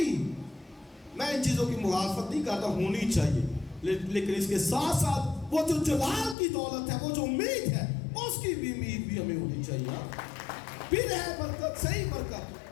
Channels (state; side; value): drops out; right; at 6.4 s